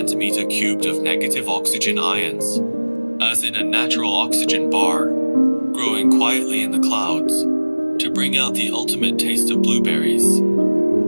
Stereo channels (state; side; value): inverted; both; correlation -1.00